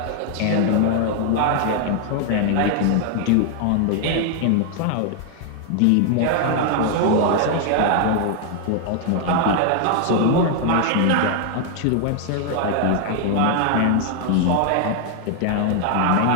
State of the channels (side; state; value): both; different; correlation 0.00